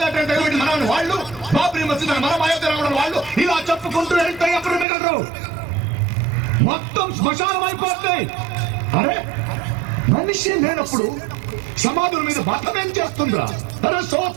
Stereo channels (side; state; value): left; drops out; at 4.9 s